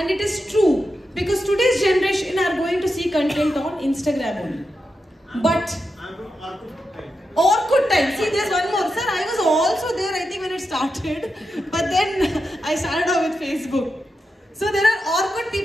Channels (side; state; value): both; normal; correlation 0.88